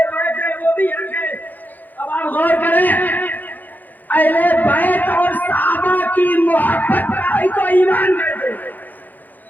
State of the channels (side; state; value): right; late; 0.084 ms